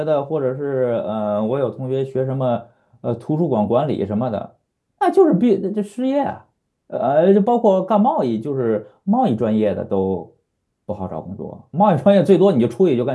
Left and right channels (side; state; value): both; identical; correlation 1.00